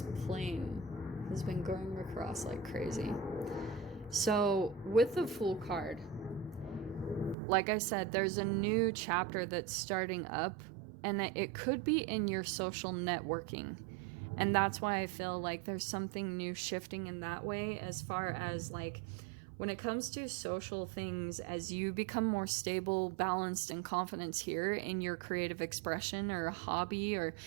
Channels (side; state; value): left; drops out; at 7.4 s